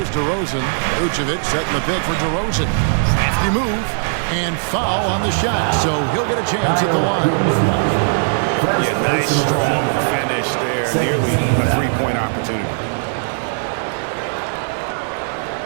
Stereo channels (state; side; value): silent; left; digital silence